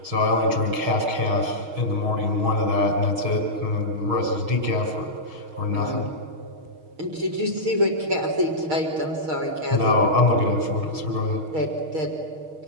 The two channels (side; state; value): left; late; 6.4 ms